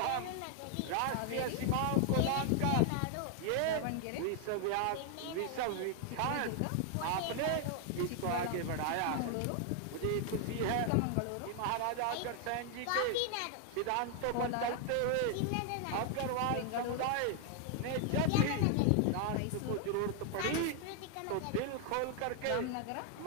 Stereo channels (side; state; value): both; different; correlation 0.00